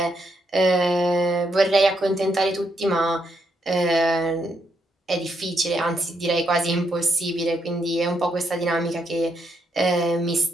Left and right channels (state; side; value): normal; both; correlation 0.77